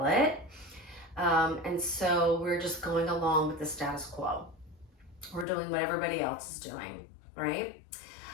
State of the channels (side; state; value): right; drops out; at 5.5 s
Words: it. And so we're just going along with the status quo. We're doing what everybody else is doing, right?